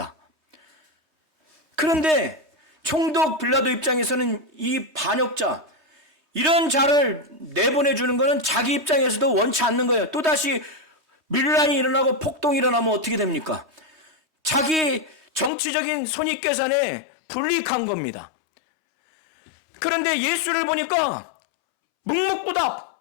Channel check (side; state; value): right; drops out; at 15.5 s